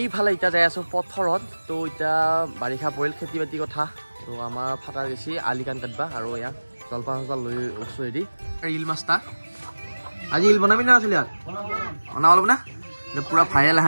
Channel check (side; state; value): both; inverted; correlation -1.00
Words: ইটা যাই আছো পথৰত তো ইটা বাৰিষা পৰিল খেতি বাতি কথা তো আমাৰ ফাটাৰ গেছি আলিকান কাটবা আৰু ইয়া জলপান লৈ ওছো এদি ৰিল মাস্তা আজি ৰিল বনাবি না আছিল ইয়াত বনাব লব না পুৰা ভাইৰেল